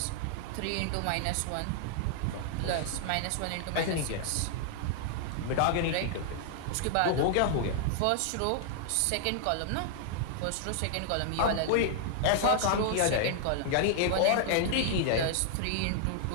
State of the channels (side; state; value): both; different; correlation -0.01